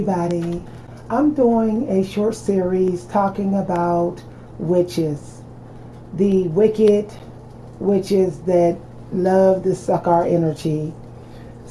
I'm doing a short series talking about witches, the wicked witches that love to suck our energy.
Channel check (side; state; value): both; identical; correlation 1.00